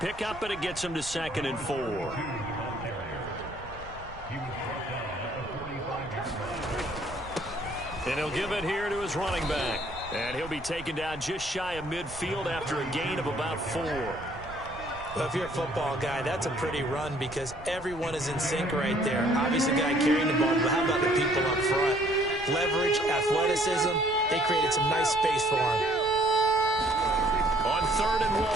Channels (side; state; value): right; noise; rumble, 16 dB below the sound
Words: pickup, and it gets him to 2nd and 4. And he'll give it here to his running back. And he'll be taken down just shy of midfield after a gain of about 4. Well, if you're a football guy, that's a pretty run because everyone is in sync right there. Obviously, the guy carrying the ball, but how about the people up front? Leverage, athleticism, they created some nice space for him. On 3rd and